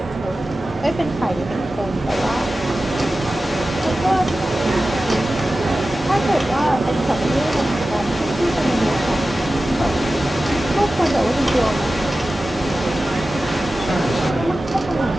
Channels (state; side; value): normal; both; correlation 0.94